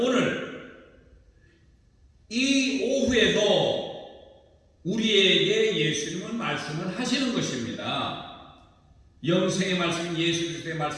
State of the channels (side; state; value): both; identical; correlation 1.00